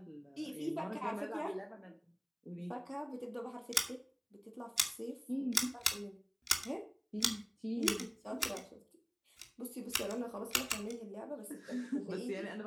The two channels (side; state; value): both; identical; correlation 1.00